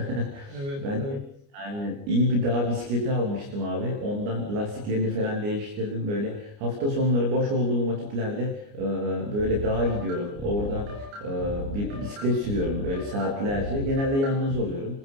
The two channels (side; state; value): left; late; 29 ms